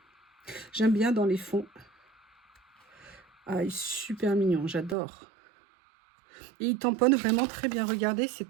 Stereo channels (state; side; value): drops out; left; at 5.0 s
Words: J'aime bien dans les fonds. Ah, il est super mignon, j'adore. Et il tamponne vraiment très bien. Regardez, c'est